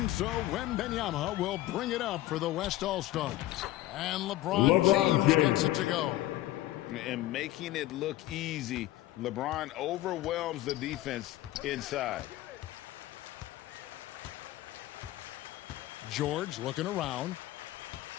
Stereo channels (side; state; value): right; quieter; 15.7 dB